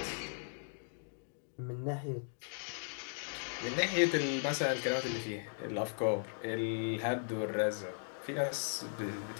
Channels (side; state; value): right; silent; digital silence